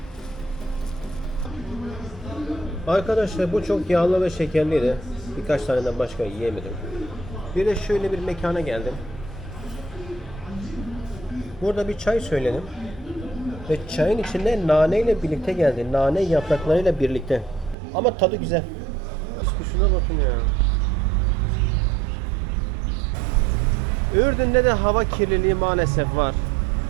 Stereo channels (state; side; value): drops out; left; at 17.8 s